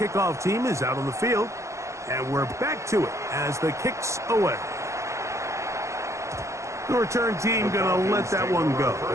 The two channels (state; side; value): late; left; 0.14 ms